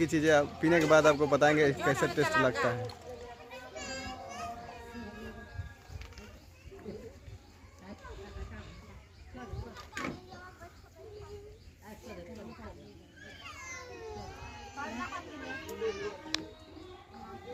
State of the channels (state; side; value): identical; both; correlation 1.00